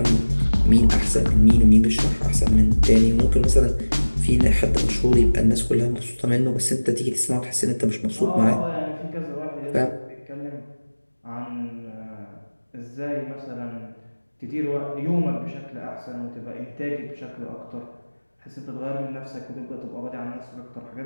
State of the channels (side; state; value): both; inverted; correlation -1.00